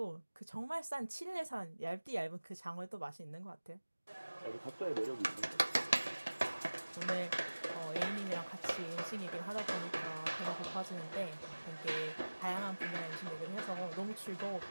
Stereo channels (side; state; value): both; inverted; correlation -1.00